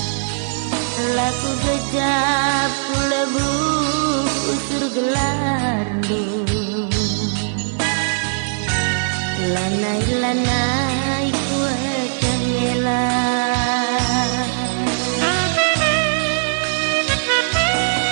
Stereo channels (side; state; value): left; silent; 66 dB below the other